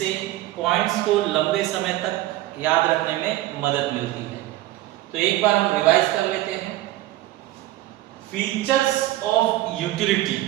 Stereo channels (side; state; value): left; quieter; 15.9 dB